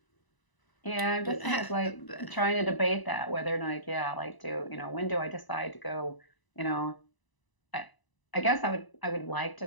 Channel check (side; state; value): right; late; 1.0 ms